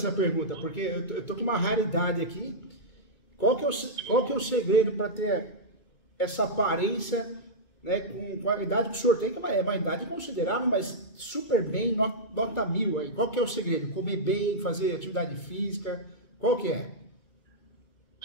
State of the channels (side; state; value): right; late; 2.2 ms